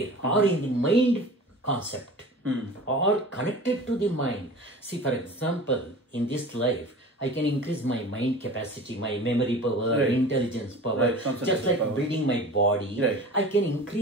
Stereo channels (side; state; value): both; normal; correlation 0.38